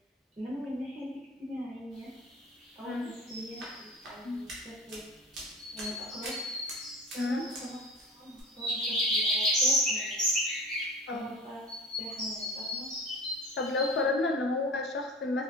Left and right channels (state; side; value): normal; both; correlation 0.36